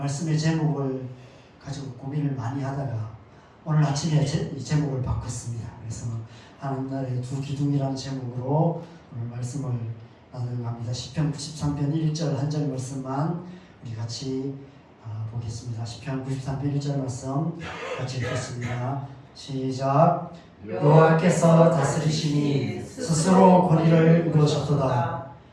제목을 가지고 고민을 많이 하다가 오늘 아침에 이 제목을 바꿨습니다. 그래서 하나님 나라의 두 기둥이라는 제목으로 오늘 말씀을 나누려고 합니다. 시편 93편 1절 한 절 말씀만 우리 같이 보겠습니다. 시편 93편 1절 말씀 같이 읽겠습니다. 시작. 여호와께서 다스리시니 스스로 권위를 이루셨도다.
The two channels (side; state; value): both; identical; correlation 1.00